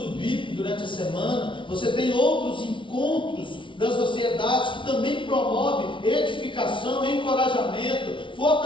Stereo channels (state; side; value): late; right; 0.24 ms